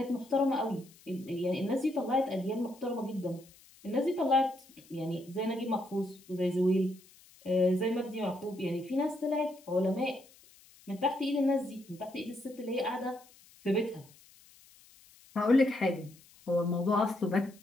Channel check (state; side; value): noise; left; hiss, 26 dB below the sound